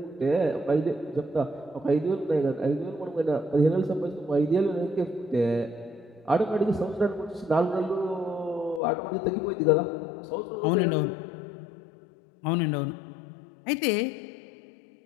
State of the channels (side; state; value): right; drops out; at 8.8 s